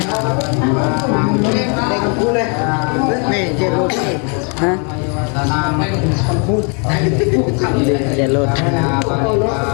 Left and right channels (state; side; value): quieter; right; 37.5 dB